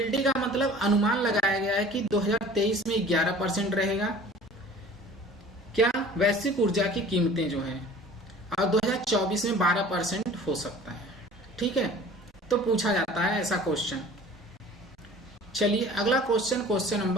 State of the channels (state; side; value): normal; both; correlation 0.46